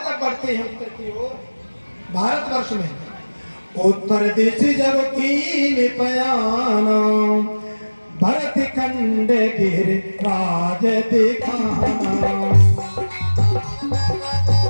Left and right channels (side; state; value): both; inverted; correlation -1.00